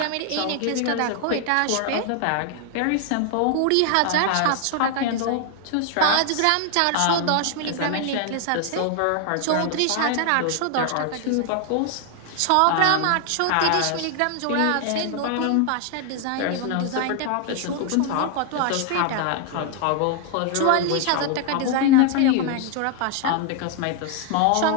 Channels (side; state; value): both; different; correlation 0.00